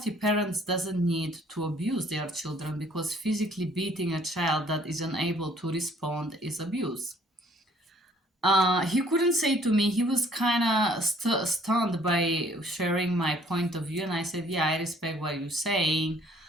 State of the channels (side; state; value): both; normal; correlation 0.59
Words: parent doesn't need to abuse their children, because physically beating a child that is unable to respond is abuse. He couldn't say to me. He was kind of stunned by sharing my point of view, and I said, "Yeah, I respect what you're saying,